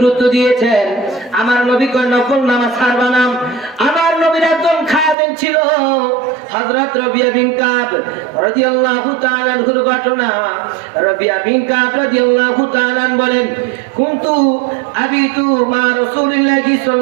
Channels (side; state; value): left; drops out; at 5.2 s